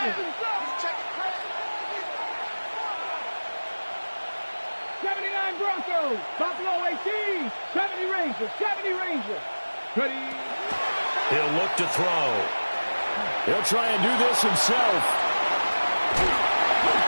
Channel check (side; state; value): both; inverted; correlation -1.00